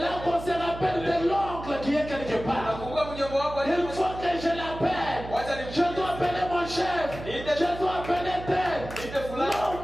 qu'on se rappelle de l'oncle qui est quelque part. Il faut que je l'appelle. Je dois appeler mon chef. Je dois appeler tel. Non,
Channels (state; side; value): noise; right; hum, 11 dB below the sound